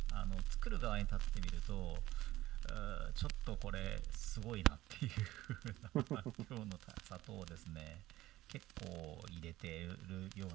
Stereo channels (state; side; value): quieter; left; 16.1 dB